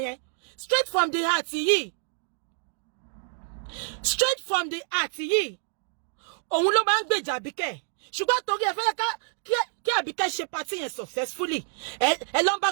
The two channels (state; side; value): silent; left; 60 dB below the other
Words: yẹn straight from the heart yìí òun ló máa ń gbèjà Àbíkẹ́ ṣùgbọ́n torí ẹ fẹ́ kí Àbíkẹ́ ṣe party yẹn successfully ẹ lọ ń bá